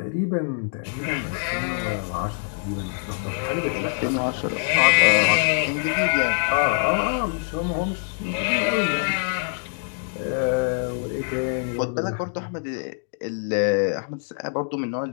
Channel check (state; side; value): silent; right; 62 dB below the other